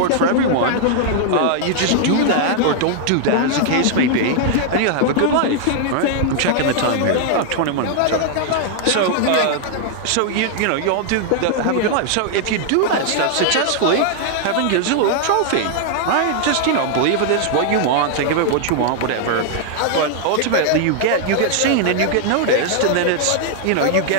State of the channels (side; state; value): both; different; correlation 0.00